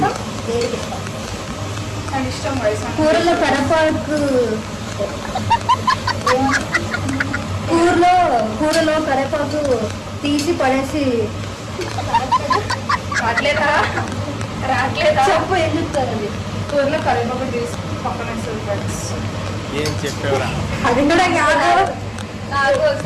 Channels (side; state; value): both; identical; correlation 1.00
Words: ఏది పెట్టాను నాకు ఇష్టం వయసు. కూరలో కరేపాకు, కూరలో కరేపాకు తీసి పడేసి రాట్లేదా చెప్పు, ఏం చెప్తారు అది? కూరలో కరివేపాకు తీసి పక్కన వేస్తుంది ఫ్రెండ్స్. ఏం చెప్పేవరా? అది కూడా కాదు. నాకు